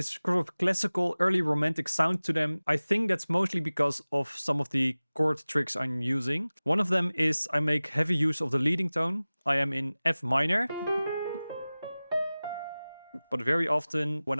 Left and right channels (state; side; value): inverted; both; correlation -0.98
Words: sort of classical early romantic sound to them. I think that's mostly because of some of the chord tricks I'm using. One of them is I make heavy use of the leading tone. I am in F minor. But very often when